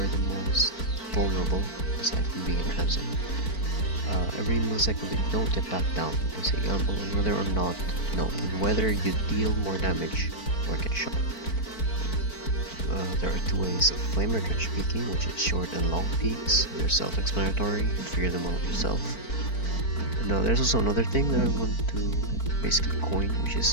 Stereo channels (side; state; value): right; late; 4.5 ms